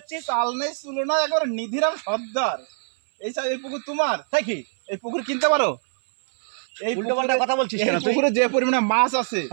চাল নেই চুলো না, একবার নিধিরাম সর্দার। এই পুকুর তোমার? তাই কি এই পুকুর কিনতে পারো? এই উল্টোপাল্টা কথা বলছিস এই কেন তুই? পুকুরে যে পরিমাণে মাছ আছে,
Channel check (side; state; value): left; silent; 63 dB below the other